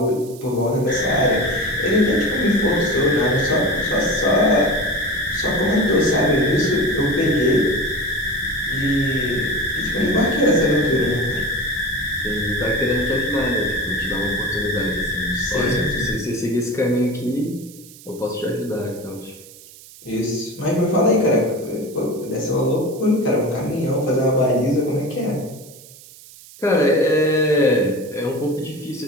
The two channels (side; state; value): right; noise; hiss, 20 dB below the sound